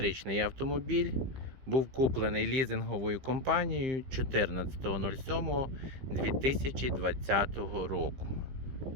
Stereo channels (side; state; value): left; late; 15 ms